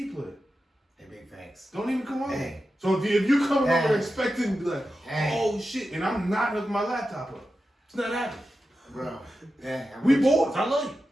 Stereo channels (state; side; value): normal; both; correlation 0.91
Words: player. Hey, big facts. Don't even come over. Hey. So if you come Hey. over expecting to be like, Hey. oh shit, and I'm not hooking my laptop up. It's not happening. Bro. Yeah, I'm We with you. boys. I love you.